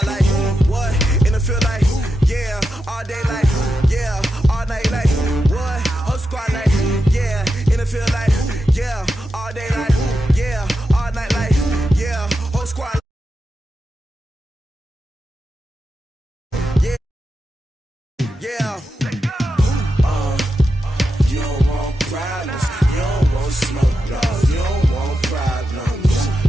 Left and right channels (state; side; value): normal; both; correlation 0.88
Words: like, what? And it feel like, yeah, all day like, yeah, all night like, what? Whole squad like, yeah, and it feel like, yeah, all day like, yeah, all night like, yeah, whole